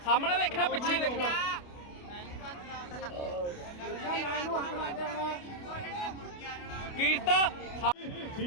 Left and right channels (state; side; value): late; right; 28 ms